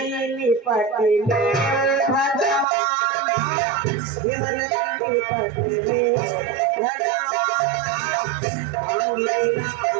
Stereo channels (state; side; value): drops out; left; at 2.7 s